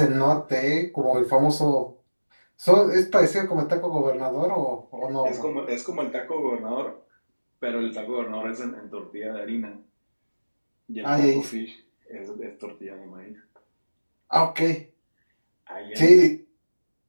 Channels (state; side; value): inverted; both; correlation -1.00